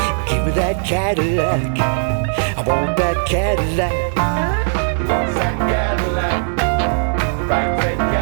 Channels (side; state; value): left; silent; 59 dB below the other